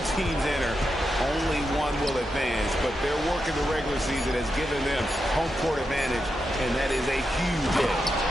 teams enter, only one will advance, but their work in the regular season has given them home court advantage, and that is a huge edge.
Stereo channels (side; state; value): both; normal; correlation 0.86